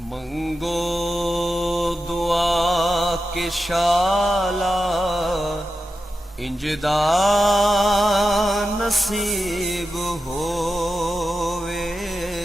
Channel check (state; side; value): normal; both; correlation 0.90